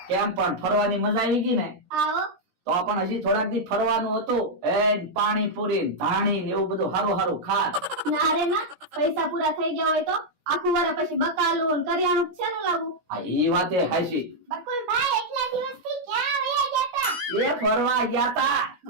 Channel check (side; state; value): left; late; 16 ms